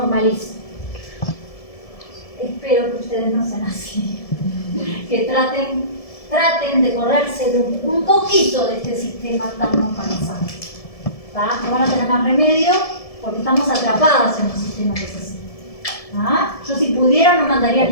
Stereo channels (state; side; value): late; right; 1.7 ms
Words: Espero que ustedes no sean así. Que traten de correrse de un poquito de este sistema tan normalizado. ¿Tá? No van a tener más remedio porque estamos atrapadas en un sistema que es así. ¿Ah? Yo si pudiera no mandaría